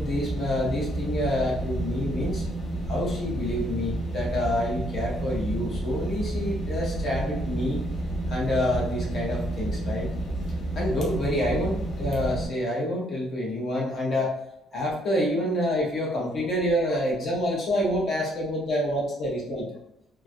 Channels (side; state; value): both; normal; correlation 0.69